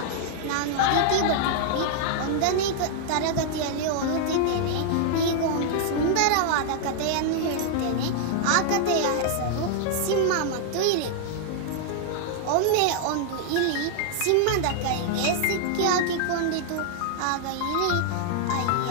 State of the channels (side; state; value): both; different; correlation -0.01